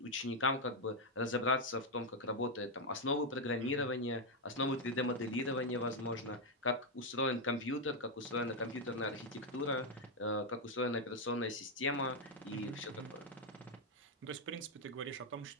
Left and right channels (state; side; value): normal; both; correlation 0.02